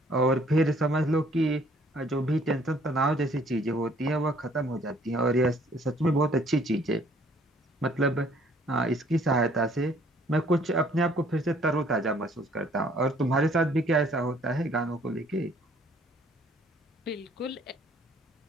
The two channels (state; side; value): normal; both; correlation 0.60